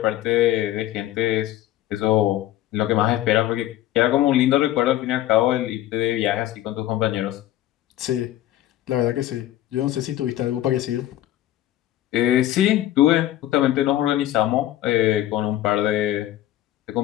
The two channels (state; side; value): quieter; right; 13.9 dB